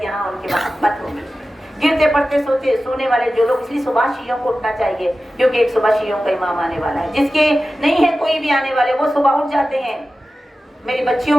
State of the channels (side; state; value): both; normal; correlation 0.94